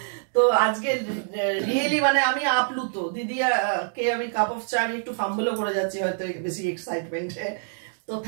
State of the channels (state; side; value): silent; left; digital silence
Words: তো আজকে রিয়েলি মানে আমি আপ্লুত দিদি কে আমি কাপ অফ চা আমি একটু ফাম্বলও করে যাচ্ছি হয়তো বেশি এক্সাইটমেন্টে। তো